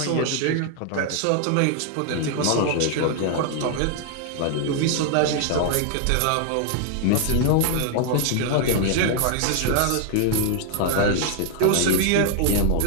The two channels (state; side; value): different; both; correlation 0.00